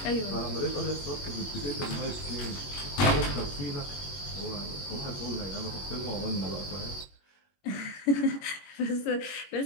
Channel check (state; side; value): late; right; 21 ms